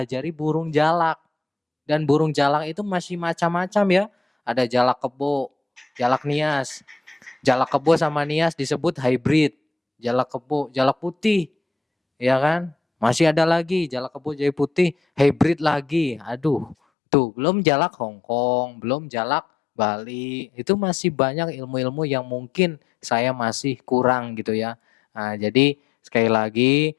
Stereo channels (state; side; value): drops out; right; at 16.8 s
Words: burung jalak. Dan burung jalak itu masih macam-macam ya. Ada jalak kebo, jalak nias. Jalak kebo sama nias disebut hybrid. Jalak kebo, jalak putih, ya kan? Masih ada lagi jalak kebo jadi putih, hybrid lagi. Aduh, tuh belum jalak Hongkong, belum jalak Bali. Itu masih banyak ilmu-ilmu yang mungkin saya masih kurang gitu ya. Nah, jadi sekali lagi